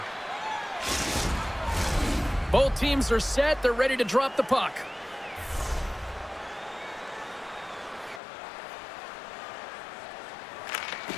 Both teams are set. They're ready to drop the puck.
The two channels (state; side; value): drops out; right; at 8.2 s